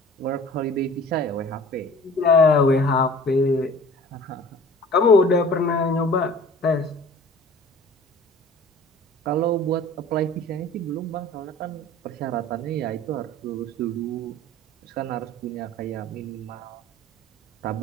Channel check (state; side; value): normal; both; correlation 0.45